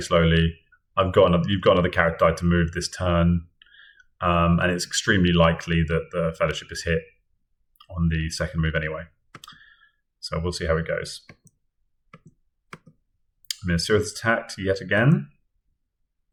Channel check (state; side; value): identical; both; correlation 1.00